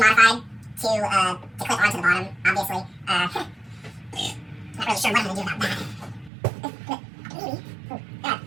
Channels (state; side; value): drops out; left; at 6.3 s